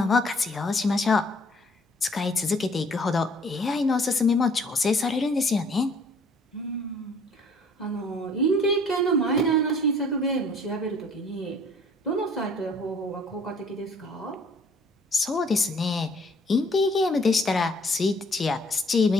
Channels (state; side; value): normal; both; correlation 0.57